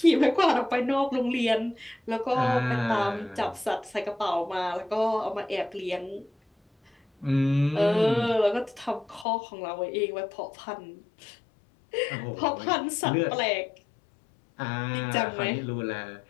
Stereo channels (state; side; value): drops out; right; at 9.2 s